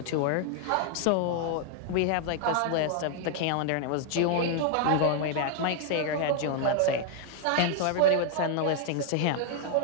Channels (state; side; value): different; both; correlation 0.00